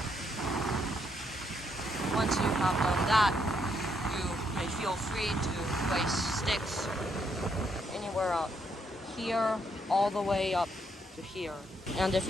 Once you have done that, you may feel free to place sticks anywhere out here all the way up to here. And if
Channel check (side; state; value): both; normal; correlation 0.74